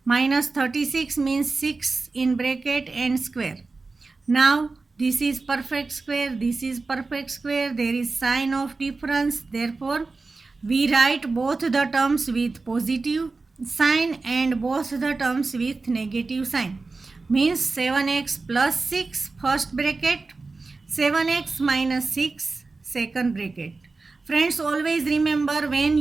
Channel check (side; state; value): left; quieter; 3.8 dB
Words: minus 36 means 6 in bracket and square. Now this is perfect square, this is perfect square, there is sign of difference. Therefore we write both the terms with positive sign and both the terms with negative sign, means 7x plus 6 first bracket, 7x minus 6 second bracket. Friends, always remember when